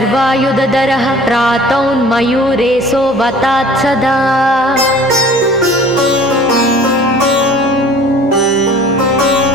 प्रातौन्मयूरेशो वतात् सदा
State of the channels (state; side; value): normal; both; correlation 0.48